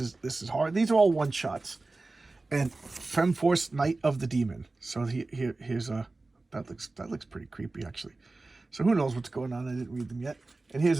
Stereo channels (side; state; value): left; quieter; 3.3 dB